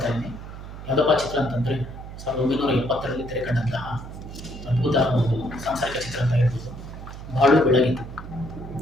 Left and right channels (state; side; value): noise; right; hum, 12 dB below the sound